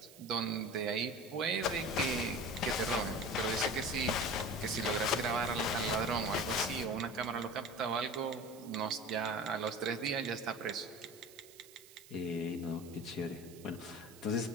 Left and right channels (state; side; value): noise; right; hiss, 20 dB below the sound